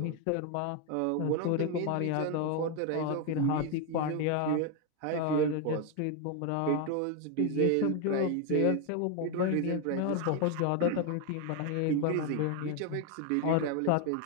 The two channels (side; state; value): both; different; correlation 0.01